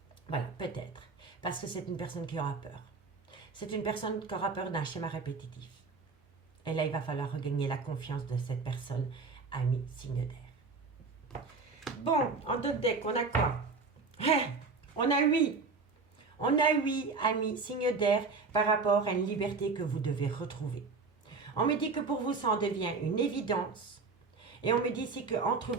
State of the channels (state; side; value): quieter; left; 4.3 dB